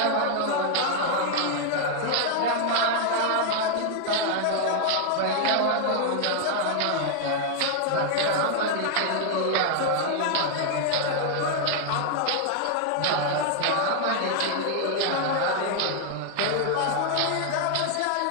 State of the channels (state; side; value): different; both; correlation 0.00